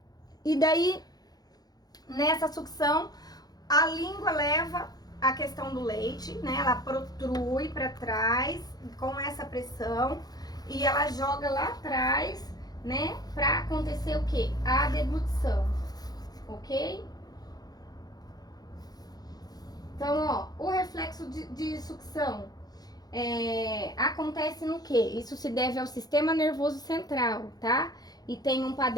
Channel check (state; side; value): late; right; 0.19 ms